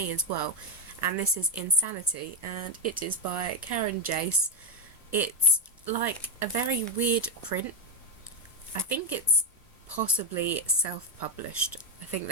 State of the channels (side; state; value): both; normal; correlation 0.07